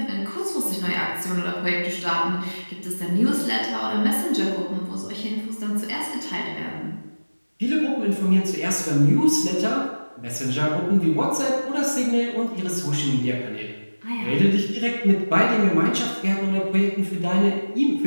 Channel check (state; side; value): inverted; both; correlation -1.00